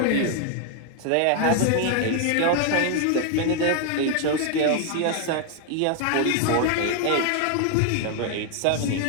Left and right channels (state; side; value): different; both; correlation 0.00